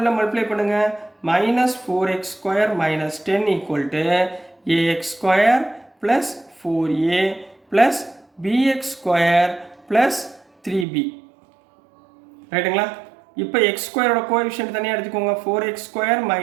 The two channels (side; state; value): left; drops out; at 10.9 s